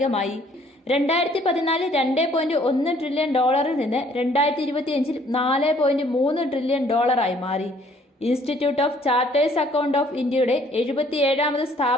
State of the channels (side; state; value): both; normal; correlation 0.61